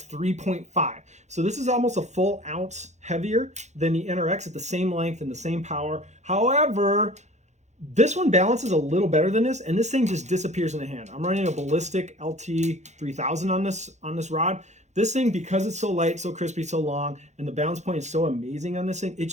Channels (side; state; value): left; late; 0.33 ms